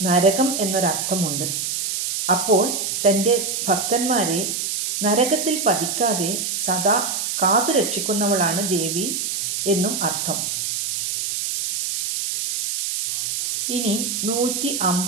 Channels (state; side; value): noise; right; hiss, 2 dB below the sound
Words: നരകം എന്നൊരർത്ഥമുണ്ട്. അപ്പോൾ തൻ്റെ ഭക്തന്മാരെ നരകത്തിൽ പതിക്കാതെ സദാ കാത്തുരക്ഷിക്കുന്നവളാണ് ദേവി എന്നും അർത്ഥം. ഇനി